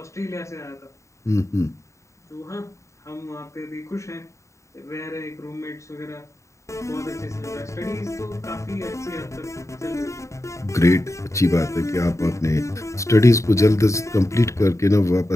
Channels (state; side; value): late; right; 0.14 ms